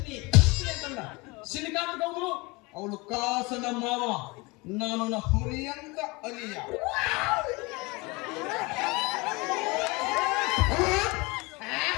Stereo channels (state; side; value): quieter; right; 25.3 dB